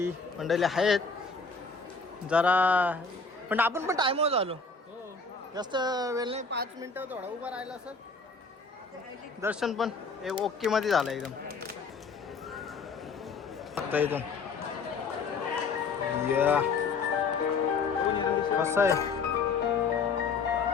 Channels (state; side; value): quieter; right; 4.5 dB